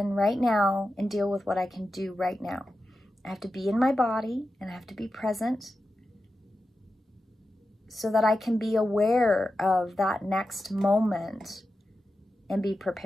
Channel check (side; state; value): both; normal; correlation 0.91